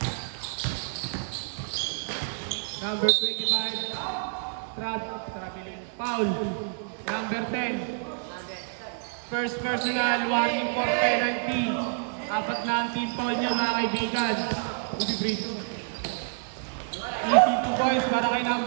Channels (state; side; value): silent; left; 59 dB below the other